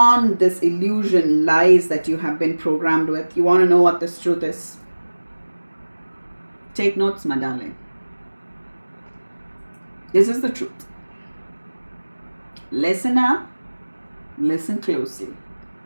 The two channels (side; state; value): both; inverted; correlation -1.00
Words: this illusion, lies that you have been programmed with. You want to know what this truth is? Take notes, my darling. This is the truth. Listen up. Listen closely.